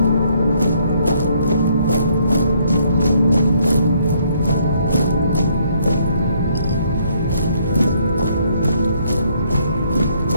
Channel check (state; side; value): inverted; both; correlation -0.68